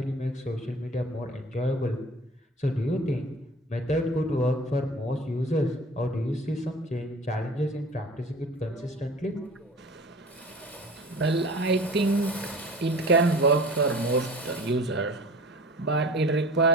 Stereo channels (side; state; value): both; normal; correlation 0.41